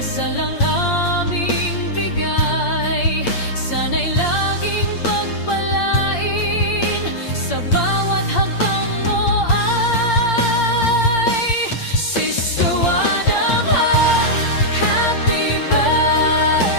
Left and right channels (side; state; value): right; late; 8.7 ms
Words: ang aming bigay, sana'y laging pagpalain sa bawat hakbang mo ay Sister Wadamha. Happy